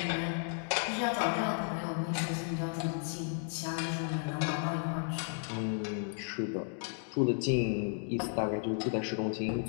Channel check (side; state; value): right; silent; 55 dB below the other